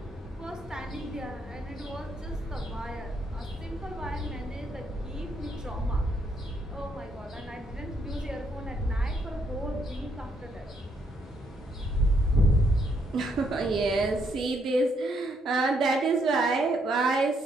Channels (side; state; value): both; normal; correlation 0.74